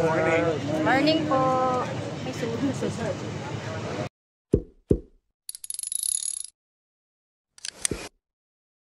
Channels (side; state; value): both; identical; correlation 1.00